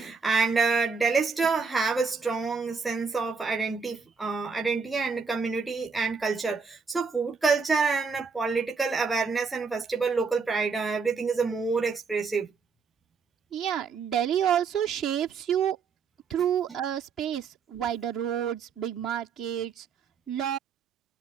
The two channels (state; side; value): quieter; left; 5.3 dB